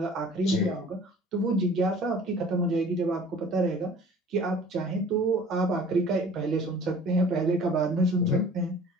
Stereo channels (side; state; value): both; normal; correlation 0.48